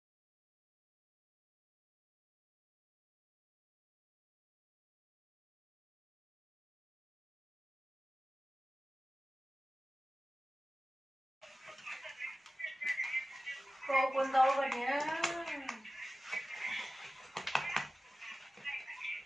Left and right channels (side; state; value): both; normal; correlation 0.95